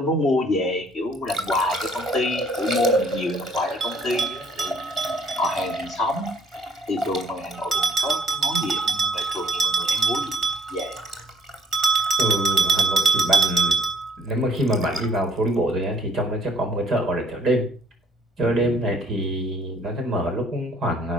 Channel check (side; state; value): both; normal; correlation 0.60